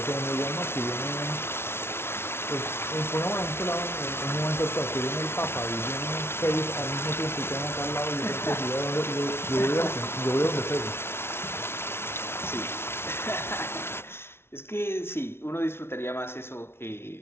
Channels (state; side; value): late; right; 0.12 ms